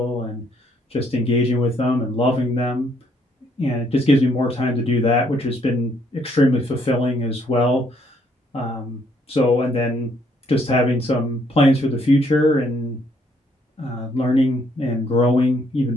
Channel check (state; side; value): normal; both; correlation 0.69